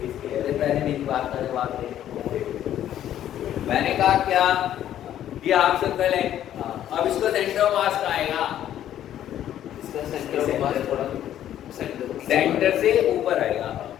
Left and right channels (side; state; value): right; quieter; 11.4 dB